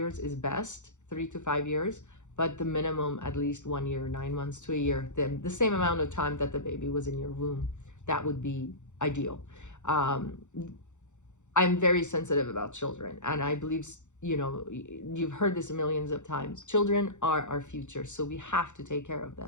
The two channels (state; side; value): late; right; 0.84 ms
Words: is best, 3 to 5 years, but the minimum at least 1 year, 9 months to a year, the same amount of time that the baby was in your womb. That would be ideal. I'm very sensitive about children, and I believe you've heard this millions of times. Children are our future, so we have to take care of